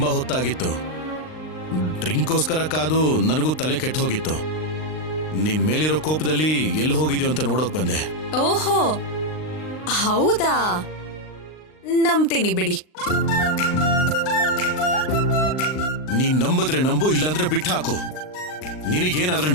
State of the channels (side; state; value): right; late; 39 ms